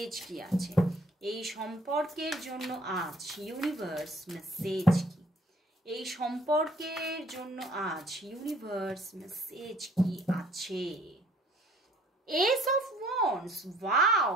কি আছে, এই সম্পর্কের জন্য আজ ইউনিভার্স মেসেজ কি, এই সম্পর্কের জন্য আজ ইউনিভার্স মেসেজ কি আছে। S of wands, wow,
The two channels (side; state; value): both; normal; correlation 0.58